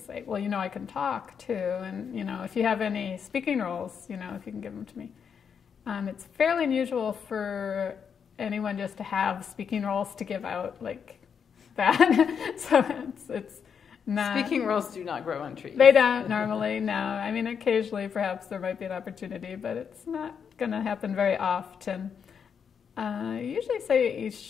well, I can talk too, and if you have any speaking roles, if you can give them to me. It's fairly unusual for anyone just to have speaking roles to give out like that. So it's not. Speaking roles do not grow on trees. They don't normally, no. I mean, occasionally perhaps there might be an opportunity, but it's not going to happen very often. I usually say you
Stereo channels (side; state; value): right; quieter; 7.0 dB